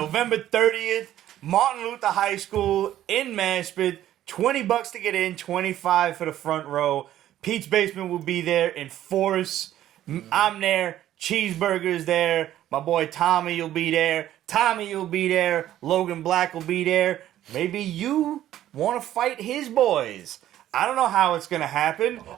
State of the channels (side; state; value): left; quieter; 12.6 dB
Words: 30th, Martin Luther High School in Maspeth? $20 to get in, $25 for the front row. Pete's Basement will be there in force. I'm there. Cheeseburger's there. My boy Tommy will be there. Tommy will be there. Logan Black will be there. Maybe you want to fight his boys. I don't know how it's going to happen.